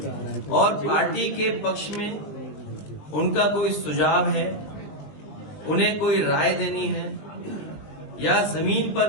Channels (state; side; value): late; right; 19 ms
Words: और पार्टी के पक्ष में उनका कोई सुझाव है, उन्हें कोई राय देनी है या जमीन पर